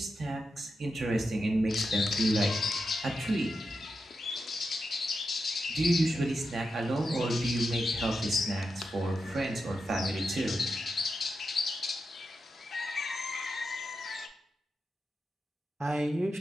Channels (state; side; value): normal; both; correlation 0.88